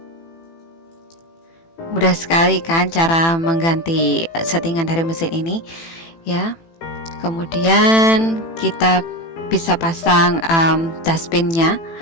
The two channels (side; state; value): right; late; 18 ms